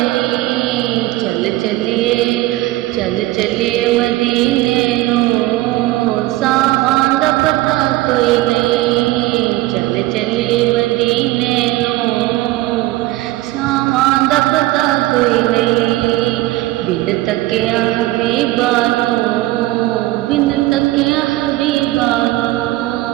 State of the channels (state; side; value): quieter; left; 17.7 dB